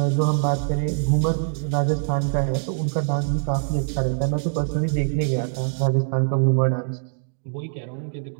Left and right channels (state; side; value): silent; left; digital silence